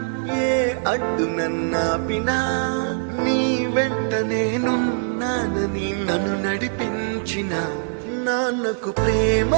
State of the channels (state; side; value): silent; left; digital silence